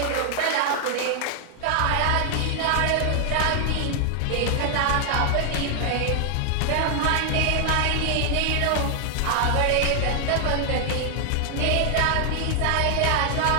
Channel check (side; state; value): both; different; correlation 0.00